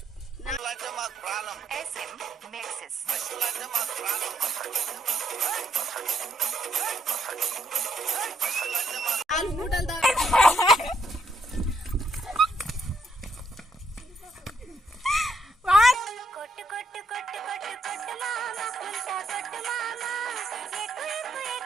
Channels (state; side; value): normal; both; correlation 0.74